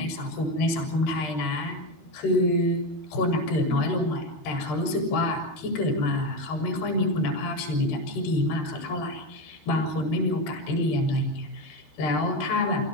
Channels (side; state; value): right; late; 13 ms